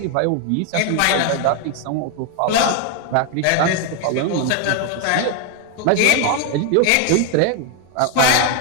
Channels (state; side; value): different; both; correlation 0.01